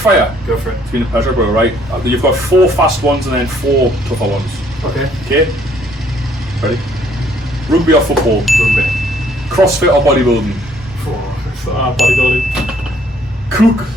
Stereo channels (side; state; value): both; normal; correlation 0.63